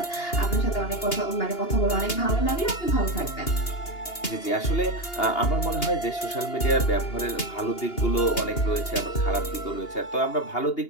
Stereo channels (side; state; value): right; late; 2.8 ms